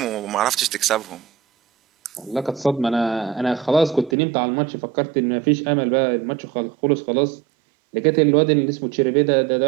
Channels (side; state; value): left; drops out; at 4.2 s